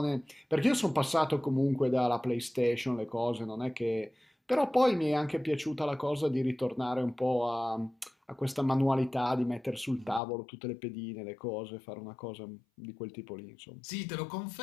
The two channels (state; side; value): drops out; right; at 10.2 s